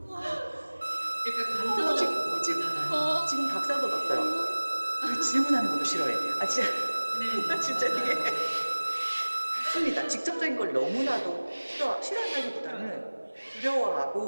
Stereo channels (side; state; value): both; inverted; correlation -1.00